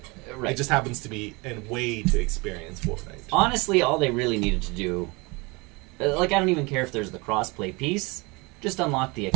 Right. It just happens to be a way to experience Fortnite. Honestly, all they really needed to do, like, I don't even care if there's the crossplay piece. Just unlock the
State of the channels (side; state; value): left; quieter; 26.6 dB